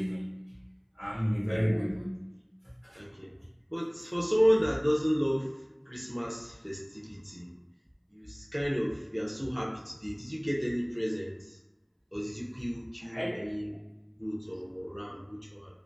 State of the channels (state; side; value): identical; both; correlation 1.00